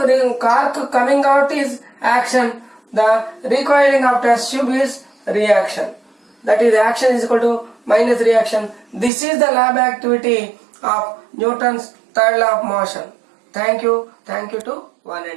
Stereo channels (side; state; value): left; drops out; at 9.1 s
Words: coming out is action. The recoiling of test tube is reaction. That is, action is equal to minus reaction. This is the lab activity of Newton's third law of motion. Thank you. Thank you to one